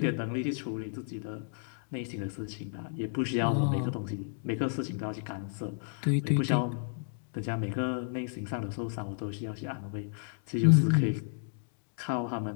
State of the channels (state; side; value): silent; right; digital silence